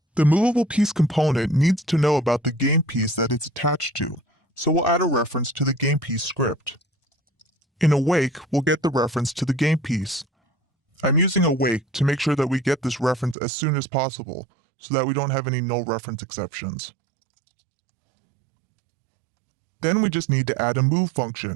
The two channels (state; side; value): drops out; left; at 13.4 s